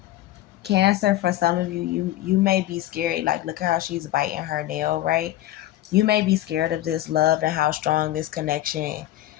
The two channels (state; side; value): quieter; right; 14.5 dB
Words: Cancer, for some of you, you may be scary. Like, look how she's biting her nail, right? You may be scared of this love and how strong this connection